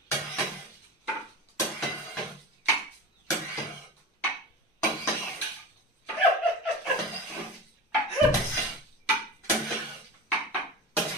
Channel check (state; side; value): normal; both; correlation 0.31